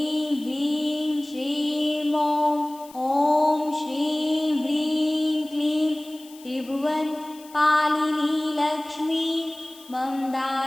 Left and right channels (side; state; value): left; noise; hiss, 22 dB below the sound